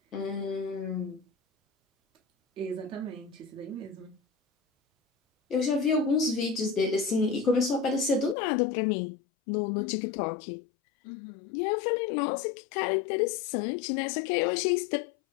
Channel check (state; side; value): drops out; right; at 8.3 s